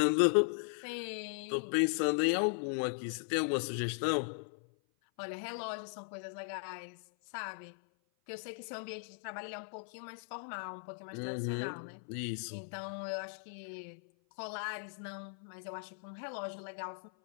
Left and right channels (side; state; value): right; silent; 52 dB below the other